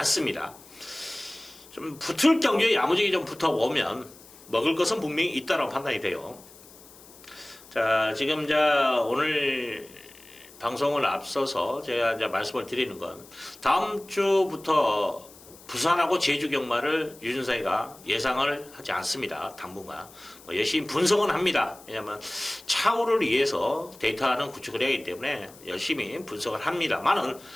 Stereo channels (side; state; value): left; noise; hiss, 22 dB below the sound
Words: 좀 붙을 경주에 야무지게 좀 붙어보면 먹을 것은 분명히 있다고 판단이 돼요. 자, 지금 오늘 방송을 앞서서 제가 말씀을 드리는 건 다음 주부터 부산하고 제주 경마를 유준사이가 예상을 하지 않습니다. 당분간 열심히 분석은 합니다. 왜냐하면 차후를 위해서 데이터는 구축을 해야 하기 때문에 열심히 분석을 합니다만은